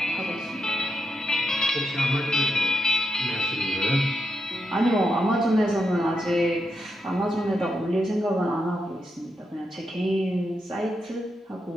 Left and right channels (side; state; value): both; normal; correlation 0.83